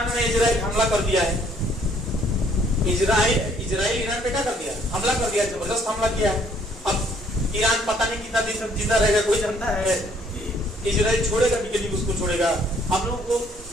ने इजराइल हमला कर दिया है, इजराइल ईरान पे क्या कर दिया? हमला कर दिया, जबरदस्त हमला किया है। अब ईरान पता नहीं कितना दिन जिंदा रहेगा, कोई जानता है? इजराइल छोड़ेगा भी कि नहीं उसको छोड़ेगा? हम लोग को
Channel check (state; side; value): normal; both; correlation 0.63